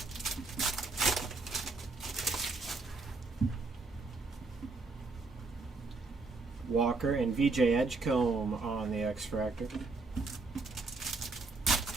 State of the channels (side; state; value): left; quieter; 3.7 dB